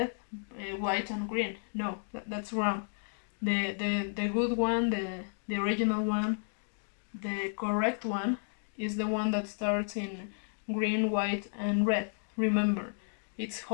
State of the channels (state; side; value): silent; right; digital silence